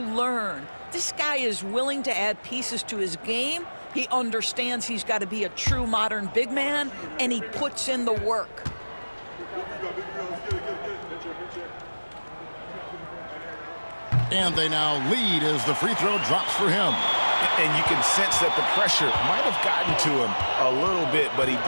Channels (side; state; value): both; inverted; correlation -1.00